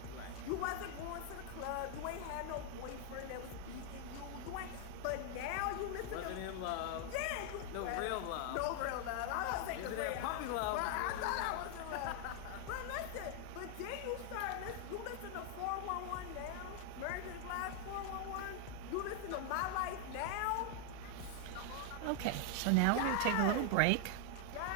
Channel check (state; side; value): different; both; correlation 0.00